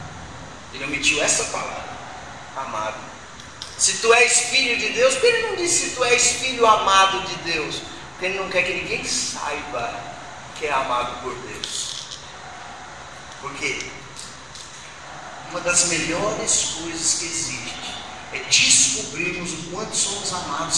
ele omitiu essa palavra, amado. Se tu és filho de Deus, porque ele não disse: tu és filho amado de Deus? Porque ele não quer que ninguém saiba que é amado por Deus. Porque uma das melhores coisas que existe é descobrirmos o quanto somos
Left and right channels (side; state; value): both; identical; correlation 1.00